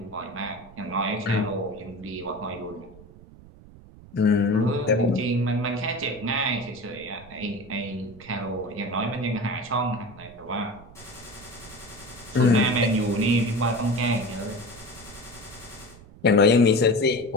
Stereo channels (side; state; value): right; noise; rumble, 21 dB below the sound